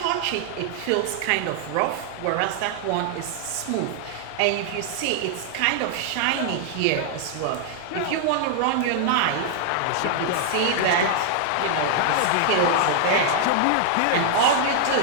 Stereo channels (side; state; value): both; different; correlation 0.00